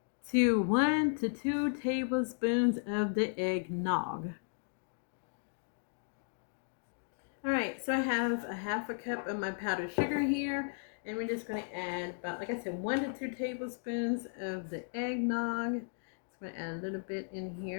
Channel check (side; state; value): right; silent; digital silence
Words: to 1 to 2 tablespoons of the eggnog. All right, so I have a half a cup of my powdered sugar here, and we're just going to add about, like I said, 1 to 2 tablespoons of the eggnog. So I'm going to add a little bit in